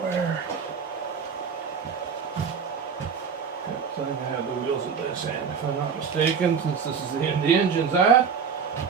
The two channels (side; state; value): left; quieter; 6.4 dB